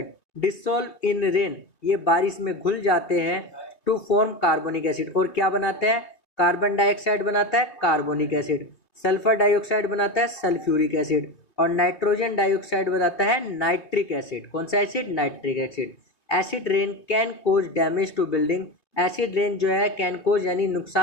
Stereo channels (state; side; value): late; right; 3.0 ms